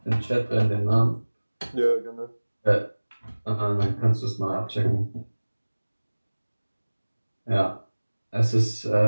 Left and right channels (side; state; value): both; inverted; correlation -1.00